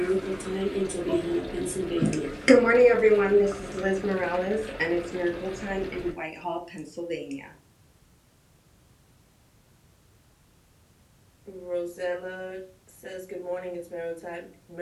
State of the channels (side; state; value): both; identical; correlation 1.00